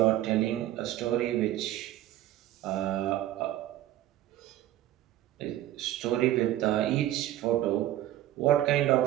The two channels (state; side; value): quieter; left; 13.9 dB